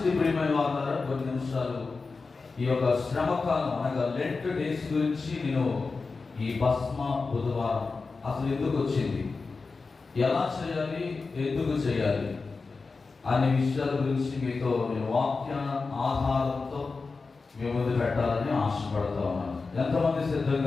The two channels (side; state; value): right; quieter; 4.2 dB